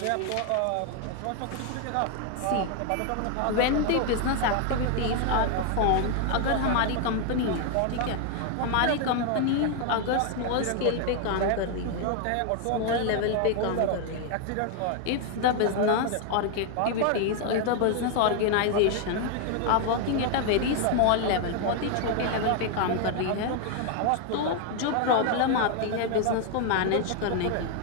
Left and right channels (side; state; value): both; different; correlation 0.00